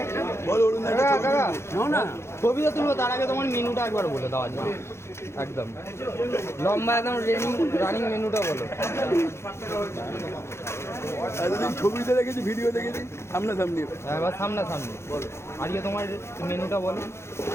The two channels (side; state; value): right; late; 0.13 ms